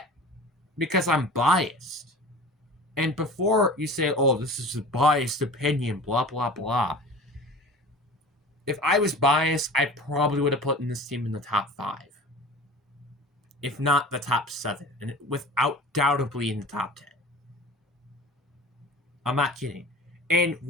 because I'm biased. And before you say, oh, this is a biased opinion, blah, blah, blah. If I was biased, I probably would have put this team in the top 5. If not the top 7. And without doubtably in the top 10. I'm not kidding. And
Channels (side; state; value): both; normal; correlation 0.39